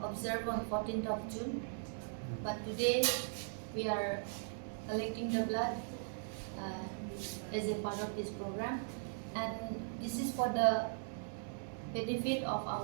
observed on 14th of June. But today we are collecting the blood as a part of this program, and this is for the benefit of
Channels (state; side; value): silent; left; digital silence